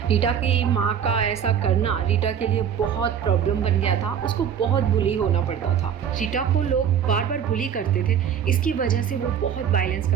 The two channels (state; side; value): quieter; left; 8.4 dB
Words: रीटा की माँ का ऐसा करना रीटा के लिए बहुत प्रॉब्लम बन गया था। उसको बहुत बुली होना पड़ता था। रीटा को लोग बार बार बुली करते थे, इसकी वजह से वो बहुत वायलेंस